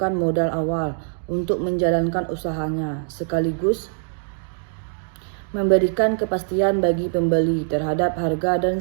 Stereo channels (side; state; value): left; silent; digital silence